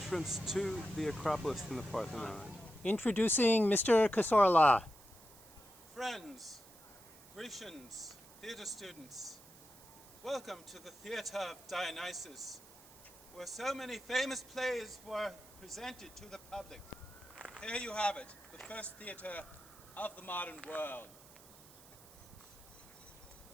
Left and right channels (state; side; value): noise; right; hiss, 21 dB below the sound